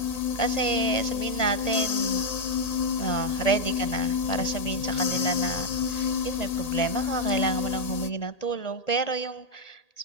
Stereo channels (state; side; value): late; right; 1.8 ms